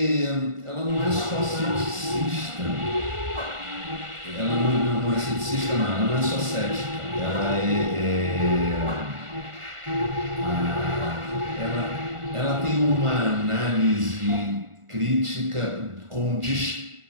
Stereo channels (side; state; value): left; late; 1.4 ms